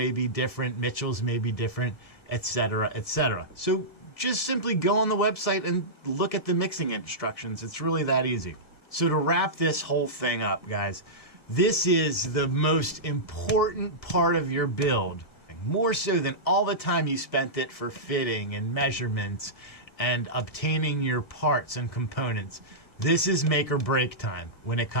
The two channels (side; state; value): right; late; 1.7 ms